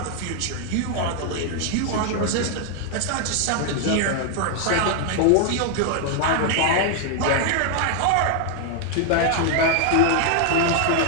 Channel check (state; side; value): different; both; correlation 0.00